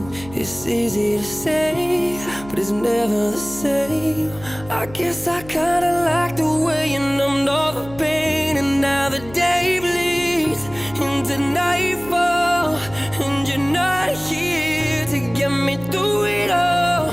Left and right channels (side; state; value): left; noise; hum, 17 dB below the sound